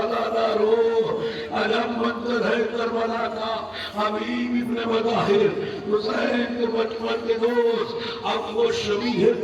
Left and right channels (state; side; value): identical; both; correlation 1.00